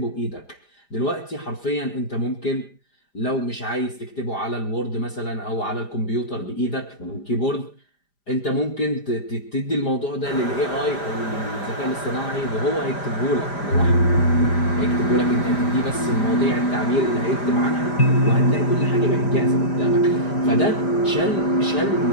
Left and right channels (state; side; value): late; right; 5.0 ms